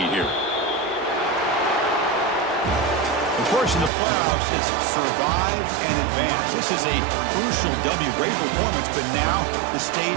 here. Of course, in the playoffs, it's survive and advance. This is a crucial W. Great performance, but now the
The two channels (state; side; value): drops out; left; at 3.9 s